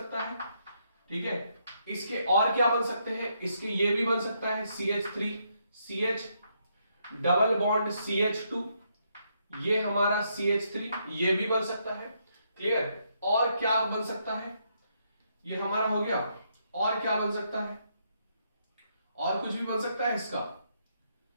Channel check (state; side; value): inverted; both; correlation -0.76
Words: है, ठीक है। इसके और क्या बन सकते हैं, इसके ये भी बन सकता है CH3, CH double bond CH2, ये हमारा CH3, ये भी बन सकता है, क्लियर। और क्या बन सकता है, ये हमारा हो गया। और क्या बन सकता है, और कुछ भी बन सकता है इसका।